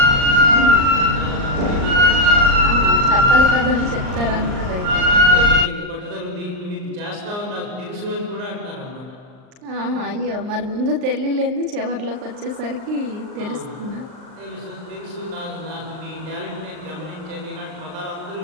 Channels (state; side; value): late; left; 39 ms